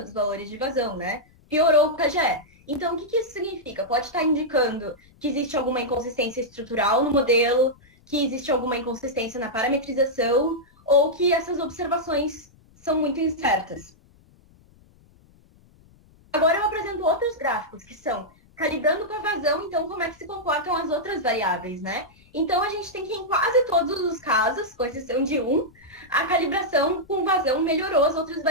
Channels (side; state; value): left; noise; rumble, 29 dB below the sound